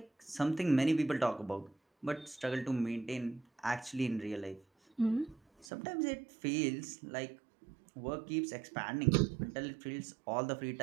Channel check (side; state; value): left; drops out; at 5.7 s